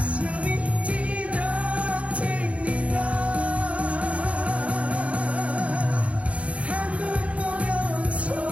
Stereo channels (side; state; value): left; late; 0.064 ms